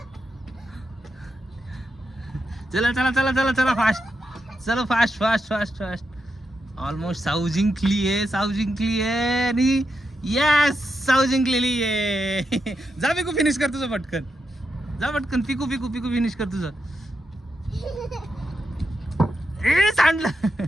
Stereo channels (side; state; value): both; normal; correlation 0.85